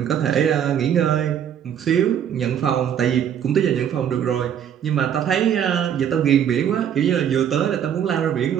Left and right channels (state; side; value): quieter; left; 9.1 dB